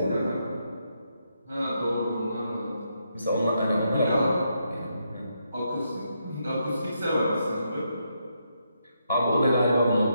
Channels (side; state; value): both; inverted; correlation -0.80